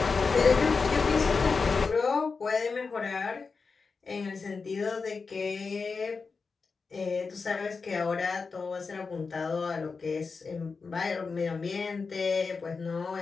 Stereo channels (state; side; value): quieter; right; 4.7 dB